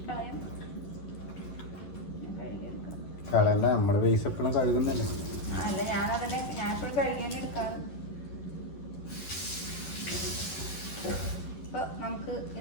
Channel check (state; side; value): late; right; 11 ms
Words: കളയാം. കഴുകിയെടുക്കാം. നമ്മുടെ പൈസ കഴുകുന്നല്ലേ? അല്ല, ഞാൻ എപ്പോഴും കഴുകിയാലും എടുക്കാറ്. അപ്പോൾ നമുക്ക്